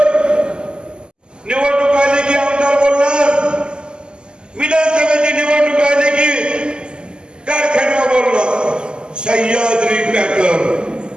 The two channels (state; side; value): late; left; 0.048 ms